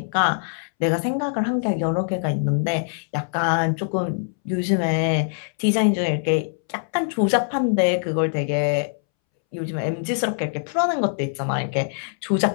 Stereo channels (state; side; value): silent; right; 63 dB below the other